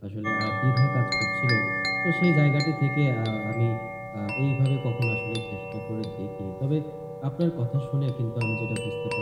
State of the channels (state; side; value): identical; both; correlation 1.00